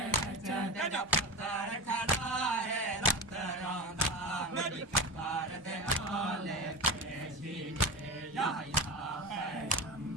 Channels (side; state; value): both; normal; correlation 0.24